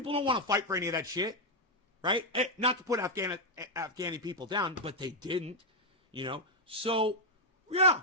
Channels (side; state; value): both; normal; correlation 0.00